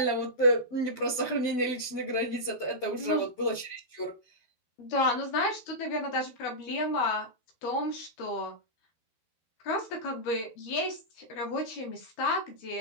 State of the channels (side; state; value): right; late; 12 ms